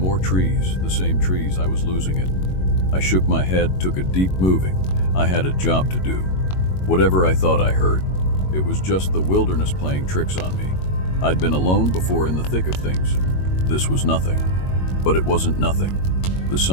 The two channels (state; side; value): late; right; 22 ms